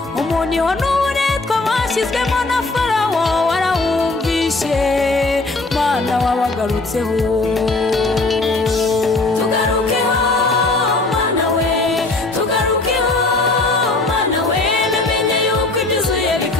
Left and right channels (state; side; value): quieter; right; 3.2 dB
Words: umuniho n'uburetwa bashyizwemo na Farawo warawumvishe Mana wabagarutseho tugarukeho Mana we tugarukeho Mana we namenye yuko ibyuzuye